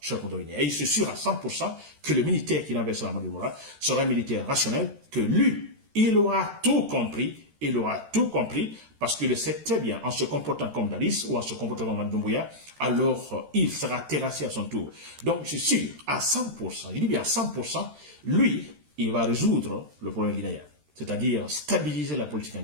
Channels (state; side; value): late; left; 13 ms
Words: Guinéens. Et il se sûr à 100% que le militaire qui l'enverse Mamadi Doumbouya sera un militaire rationnel, que lui, il aura tout compris, il aura tout compris, parce qu'il le sait très bien, en se comportant comme Dadis ou en se comportant comme Mamadi Doumbouya, alors il sera terrassé à son tour. Donc, je suis sûr, à 100%, je dis bien à 100%, lui, il va résoudre le problème guinéen. C'est-à-dire stabiliser la politique en